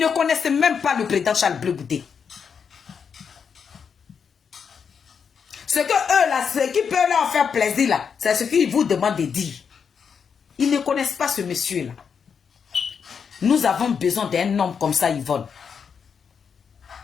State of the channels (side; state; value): right; quieter; 6.6 dB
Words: ne connaissaient même pas le président Charles Blé Goudé. Ce que eux là, ce qui peut leur faire plaisir là, c'est ce qu'ils vous demandent de dire. Ils ne connaissent pas ce monsieur là. Nous avons besoin d'un homme comme ça, Yvonne.